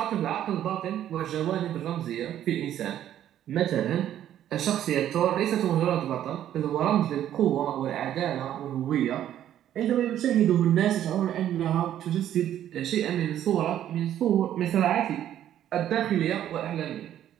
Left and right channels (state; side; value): quieter; left; 11.3 dB